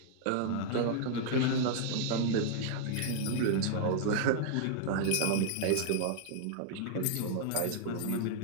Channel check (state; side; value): different; both; correlation -0.01